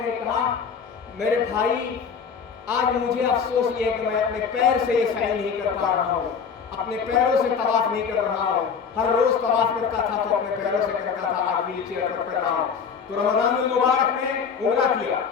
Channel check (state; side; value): quieter; right; 6.4 dB